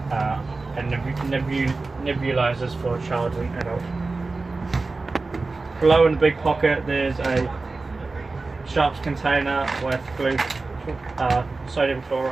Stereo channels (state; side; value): quieter; left; 3.7 dB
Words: and nebulizers for child and adult. Below in the big pocket there's a sharps container with sodium